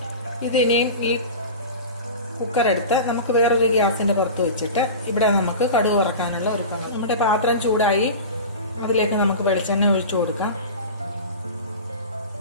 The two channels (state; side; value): inverted; both; correlation -0.32